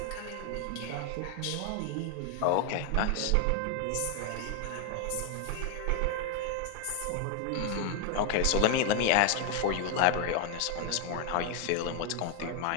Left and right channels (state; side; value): different; both; correlation 0.00